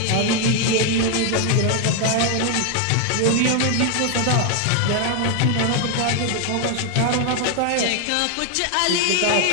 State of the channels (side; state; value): both; different; correlation 0.00